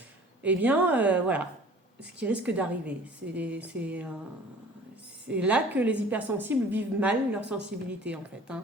eh bien voilà, ce qui risque d'arriver. C'est là que les hypersensibles vivent mal leur sensibilité en fait.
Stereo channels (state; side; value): normal; both; correlation 0.47